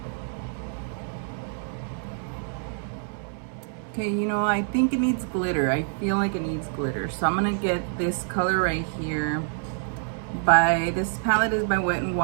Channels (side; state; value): left; silent; 60 dB below the other